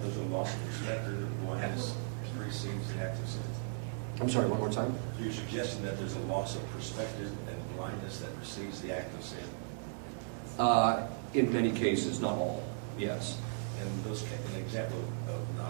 there's a loss of perspective of one has receives the act of sin? I'm sorry, one more time? So you're suggesting that there's a loss of perspective and blindness that receives the act of sin? In many cases, not all. Yes. And those, an example of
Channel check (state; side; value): silent; left; 54 dB below the other